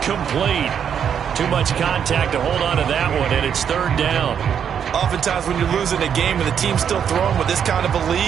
Too much contact to hold on to that one, and it's 3rd down. Oftentimes when you're losing a game and the team's still throwing with this kind of a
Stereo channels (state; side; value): quieter; left; 8.1 dB